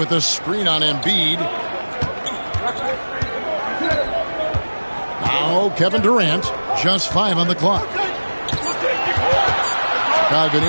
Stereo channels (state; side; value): inverted; both; correlation -1.00